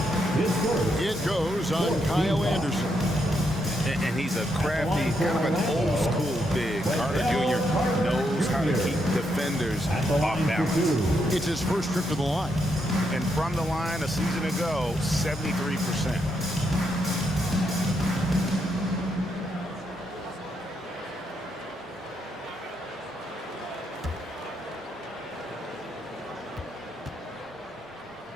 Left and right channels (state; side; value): normal; both; correlation 0.79